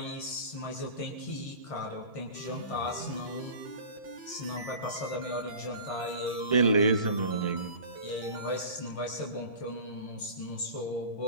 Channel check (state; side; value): late; right; 1.6 ms